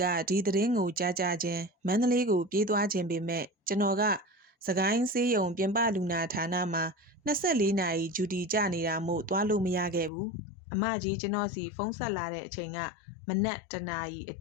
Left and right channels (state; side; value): drops out; right; at 10.1 s